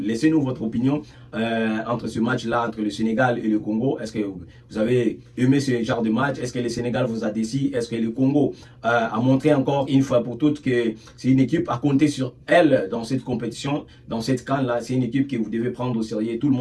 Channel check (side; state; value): both; identical; correlation 1.00